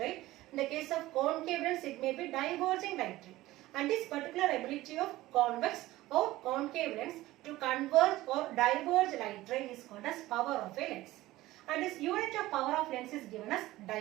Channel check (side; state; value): left; quieter; 17.2 dB